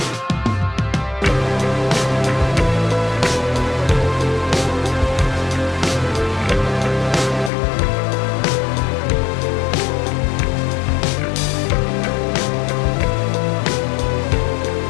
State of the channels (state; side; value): drops out; right; at 7.5 s